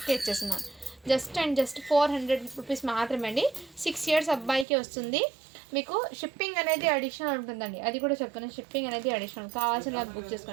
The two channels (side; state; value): left; drops out; at 4.7 s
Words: ఇచ్చేస్తున్నాను. జస్ట్ 400 రూపీస్ మాత్రమే అండి. 6 years అబ్బాయికి వస్తుంది. మీకు షిప్పింగ్ అనేది అడిషనల్ ఉంటుందండి. అది కూడా చెప్తాను. షిప్పింగ్ అనేది అడిషనల్. కావాల్సిన బుక్